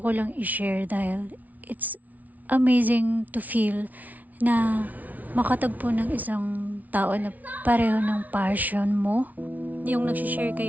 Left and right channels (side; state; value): left; late; 0.075 ms